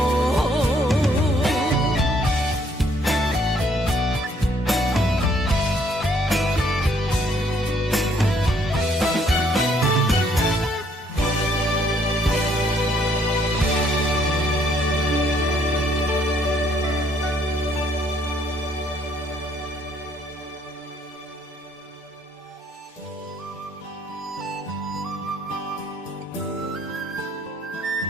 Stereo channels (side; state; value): both; normal; correlation 0.66